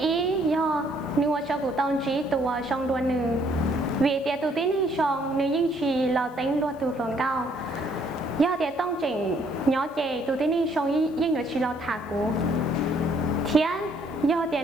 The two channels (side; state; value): left; noise; hiss, 30 dB below the sound